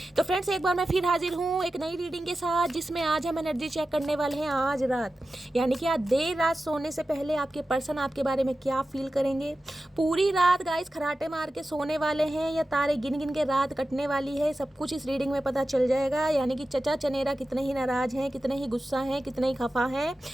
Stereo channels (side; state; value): both; normal; correlation 0.93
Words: तो फ्रेंड्स एक बार मैं फिर हाजिर हूँ एक नई रीडिंग के साथ, जिसमें आज हम एनर्जी चेक करने वाले हैं आज रात, यानी कि आज देर रात सोने से पहले आपके पर्सन आपके बारे में क्या फील करेंगे। पूरी रात गाइस खराटे मार के सोने वाले हैं या तारे गिन गिन के रात कटने वाली है, सब कुछ इस रीडिंग में पता चल जाएगा। यानी कि चचा चनेरा कितने ही नाराज हैं, कितने ही गुस्सा हैं, कितने ही खफा हैं,